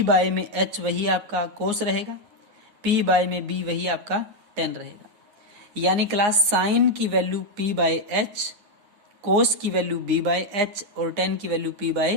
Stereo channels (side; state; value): left; late; 9.4 ms